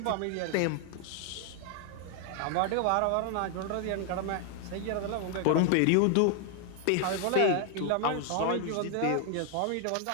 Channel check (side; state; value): both; different; correlation 0.00